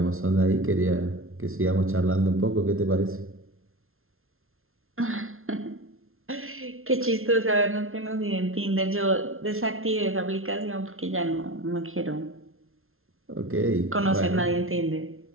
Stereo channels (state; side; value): late; left; 0.61 ms